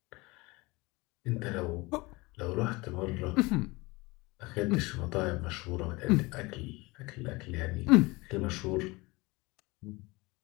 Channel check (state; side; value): quieter; right; 23.5 dB